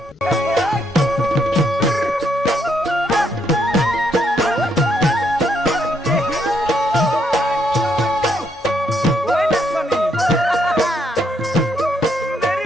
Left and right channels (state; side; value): normal; both; correlation 0.74